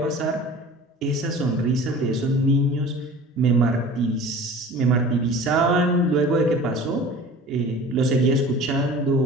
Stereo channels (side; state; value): both; normal; correlation 0.41